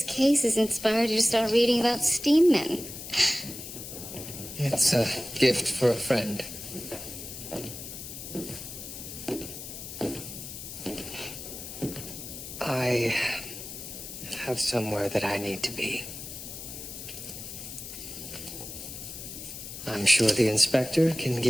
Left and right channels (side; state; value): left; noise; hiss, 10 dB below the sound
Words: case has inspired you to start reading about steam men. It's a gift for a friend. I have somewhere that I need to be. I'm sure the inspector can